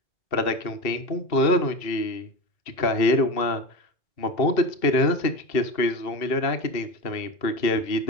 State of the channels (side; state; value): right; late; 2.7 ms